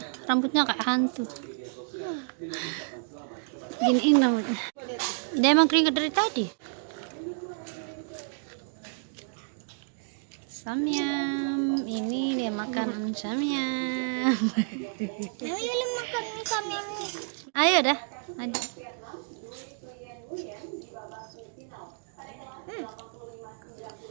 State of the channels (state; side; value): silent; left; digital silence